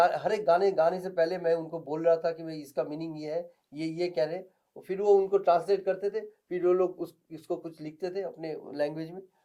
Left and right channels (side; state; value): both; identical; correlation 1.00